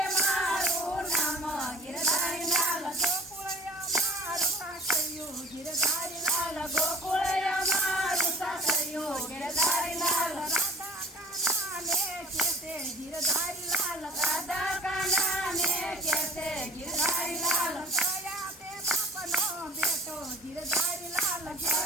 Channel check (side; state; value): both; normal; correlation 0.48